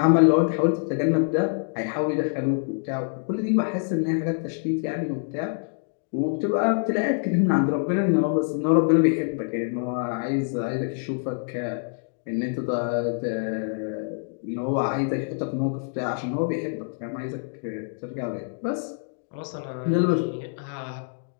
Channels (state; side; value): silent; right; digital silence